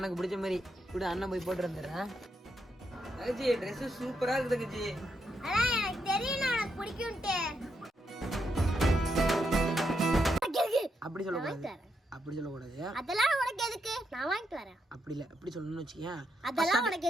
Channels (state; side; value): normal; both; correlation 0.81